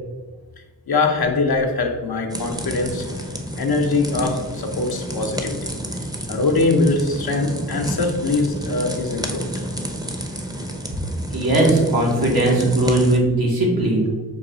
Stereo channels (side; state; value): both; normal; correlation 0.30